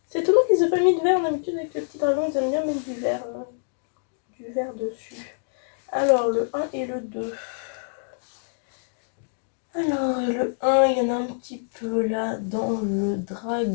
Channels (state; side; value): silent; right; digital silence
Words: C'est étonnant qu'ils aient pas mis de vert. D'habitude, avec le petit dragon, ils aiment bien mettre du vert dessus. Alors, le 1 et le 2. Alors, le 1, il y en a un petit peu là dans le